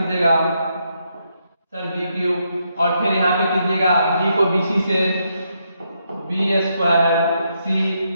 सर बी क्यूब, और फिर यहाँ पे कीजिएगा b को बी सी से बी स्क्वायर सी,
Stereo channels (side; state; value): both; inverted; correlation -0.79